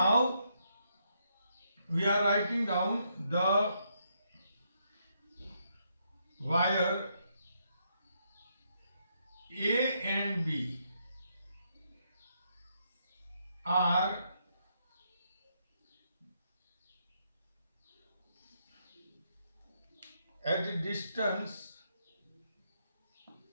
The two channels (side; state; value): both; inverted; correlation -0.77